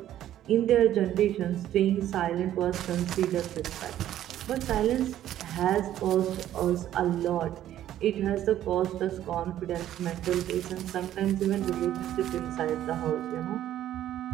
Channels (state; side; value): quieter; left; 12.2 dB